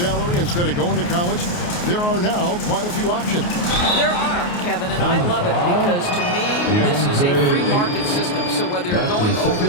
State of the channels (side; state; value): right; late; 28 ms